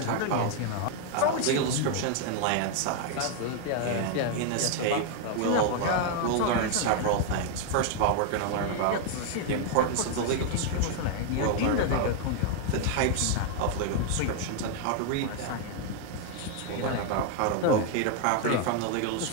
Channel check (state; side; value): different; both; correlation 0.00